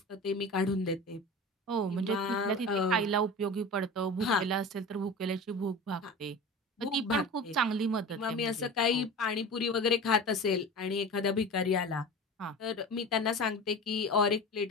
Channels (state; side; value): normal; both; correlation 0.33